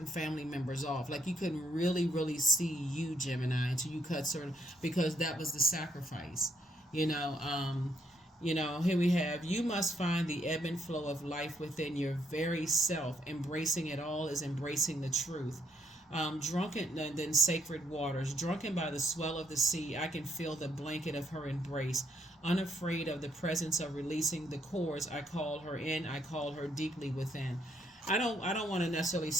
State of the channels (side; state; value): both; normal; correlation 0.73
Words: family members off. Like you couldn't really, really see you, Gemini, until you cut certain, because that was the sacrifice, here we have, you must find the ebb and flow of life within your very self. Embracing it all is embracing the truth. Drunken, and then sacred waters. Drunken by the swell of the sea, I can feel the blanket of her embrace. Unafraid of the presence of releasing the cords, I call her in. I call her deeply within. I don't want to necessarily